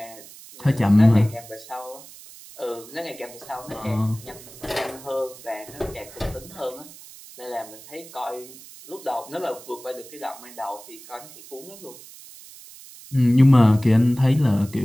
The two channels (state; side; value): noise; right; hiss, 18 dB below the sound